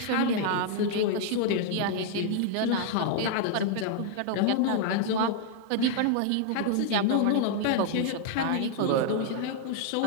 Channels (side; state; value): both; different; correlation 0.00